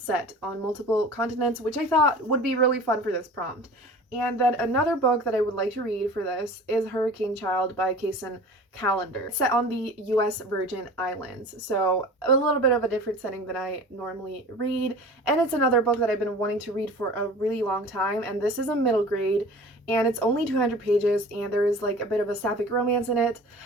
set on multiple continents, which I thought would be really fun for this prompt. And then another book that I would like to read for this is Hurricane Child by Kason Calendar. It's set on the US Virgin Islands, so a little bit of a different setting than I normally read. And it's another book that I've been wanting to read for a really long time, and this is a middle grade, and it's only 200 pages, and there is like a bit of a sapphic romance in it,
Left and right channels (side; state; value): both; normal; correlation 0.41